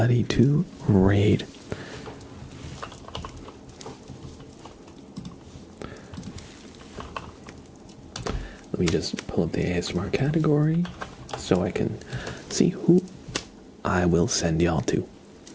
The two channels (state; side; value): identical; both; correlation 1.00